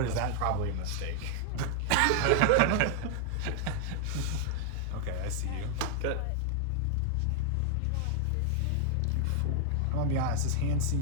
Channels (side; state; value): both; different; correlation 0.00